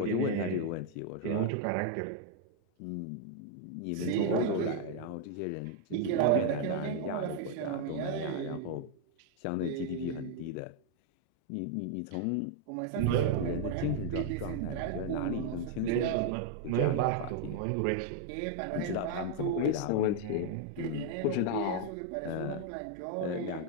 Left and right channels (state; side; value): different; both; correlation 0.00